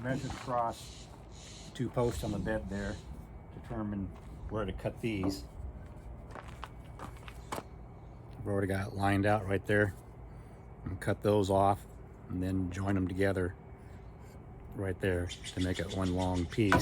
across the 2 posts on the bed there, determine where to cut these. I've already got it lined out right there. And cut those off and then join them together right there to make it one long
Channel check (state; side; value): identical; both; correlation 1.00